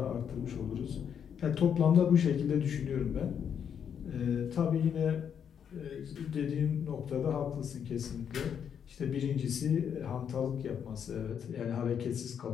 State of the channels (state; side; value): quieter; right; 8.0 dB